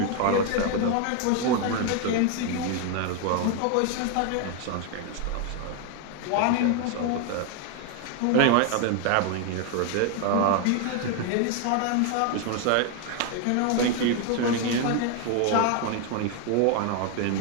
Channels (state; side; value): different; both; correlation 0.01